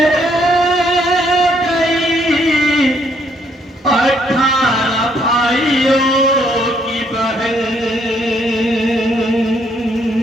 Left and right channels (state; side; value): normal; both; correlation 0.70